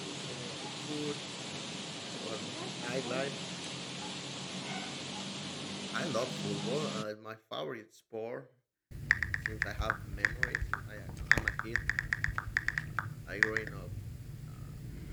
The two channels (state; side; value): identical; both; correlation 1.00